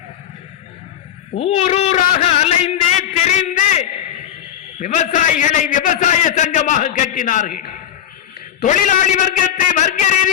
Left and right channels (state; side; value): quieter; right; 10.3 dB